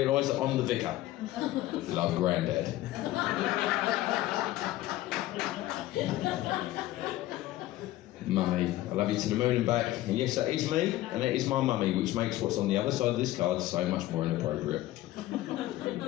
that I'm the vicar. Love, Grandad. Mummy, I love you to the moon and back. And yes, that is me, and that is my mummy, which makes what's on the other side of this card so much more inappropriate.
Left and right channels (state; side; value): quieter; right; 15.7 dB